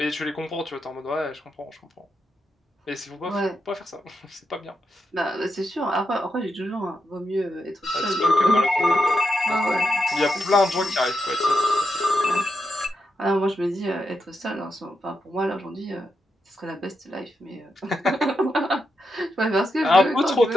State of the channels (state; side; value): normal; both; correlation 0.85